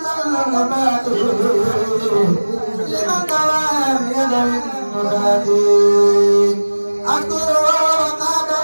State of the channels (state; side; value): inverted; both; correlation -1.00